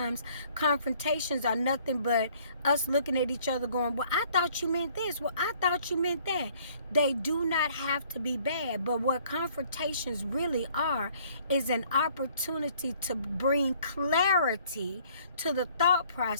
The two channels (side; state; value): both; inverted; correlation -0.59